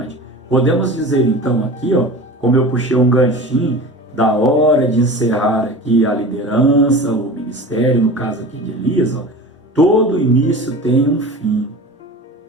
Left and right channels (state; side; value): normal; both; correlation 0.35